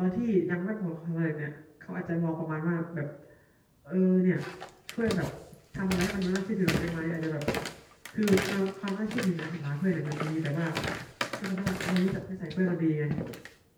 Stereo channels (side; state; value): both; identical; correlation 1.00